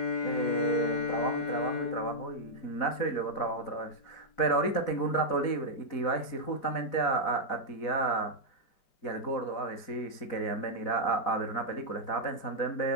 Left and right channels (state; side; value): late; right; 4.1 ms